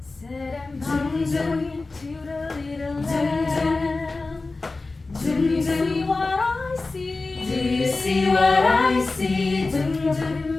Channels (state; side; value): quieter; right; 3.5 dB